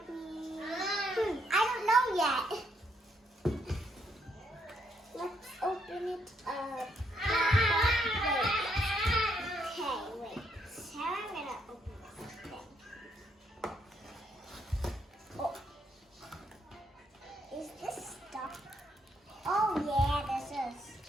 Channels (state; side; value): normal; both; correlation 0.74